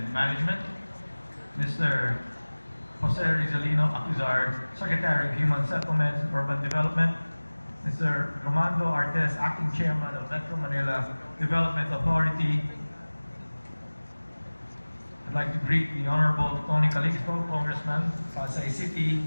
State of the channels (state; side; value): inverted; both; correlation -1.00